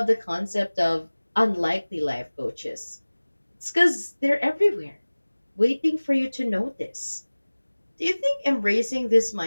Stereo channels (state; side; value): inverted; both; correlation -1.00